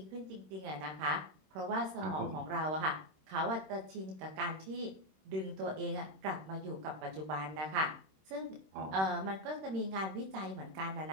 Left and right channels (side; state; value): left; late; 26 ms